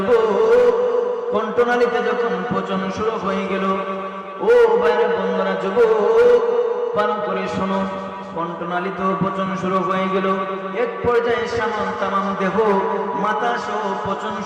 কণ্ঠনালীতে যখন পচন শুরু হয়ে গেল, ও ভাইরা বন্ধুরা, যুবক, ভালো করে শোনো, কণ্ঠনালীতেও পচন শুরু হয়ে গেল। এক পর্যায়ে তামাম দেহ, মাথা সহ পচন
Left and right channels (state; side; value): identical; both; correlation 1.00